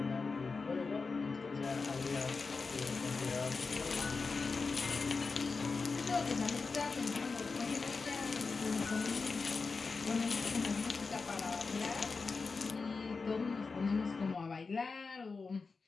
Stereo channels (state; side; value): quieter; right; 4.4 dB